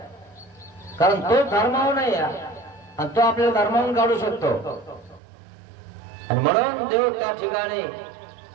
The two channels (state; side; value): drops out; left; at 5.2 s